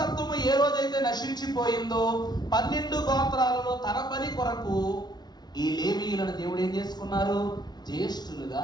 ఏ రోజైతే నశించిపోయిందో 12 గోత్రాలలో తన పని కొరకు ఈ లేవీయులను దేవుడు ఏం చేసుకున్నారు? జ్యేష్ఠులుగా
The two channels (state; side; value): late; right; 0.20 ms